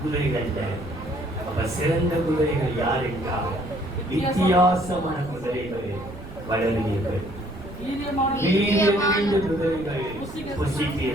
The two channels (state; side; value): noise; right; rumble, 14 dB below the sound